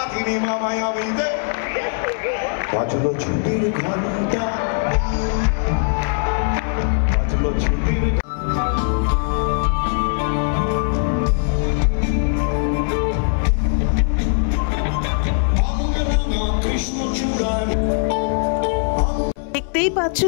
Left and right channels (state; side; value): silent; right; 62 dB below the other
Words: মামায় আমি দে বাজলো ছুটির ঘন্টা, বাজলো ছুটির। দেখতেই পাচ্ছ